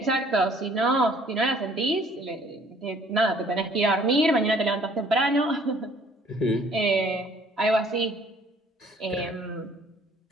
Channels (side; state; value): both; normal; correlation 0.58